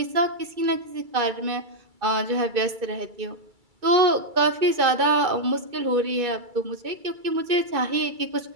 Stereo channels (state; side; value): late; left; 2.3 ms